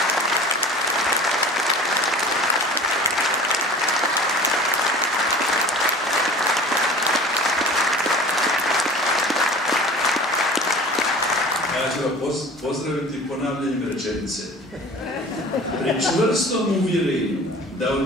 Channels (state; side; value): normal; both; correlation 0.42